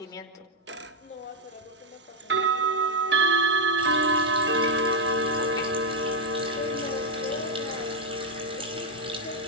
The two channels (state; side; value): normal; both; correlation 0.02